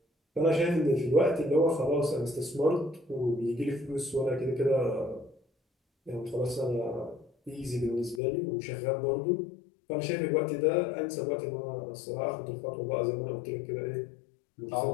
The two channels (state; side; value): drops out; right; at 8.2 s